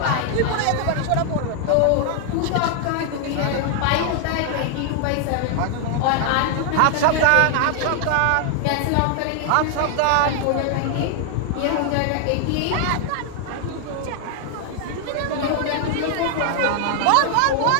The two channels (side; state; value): both; different; correlation 0.00